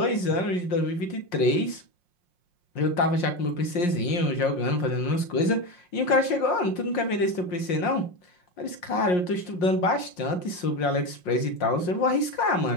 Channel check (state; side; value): late; right; 5.6 ms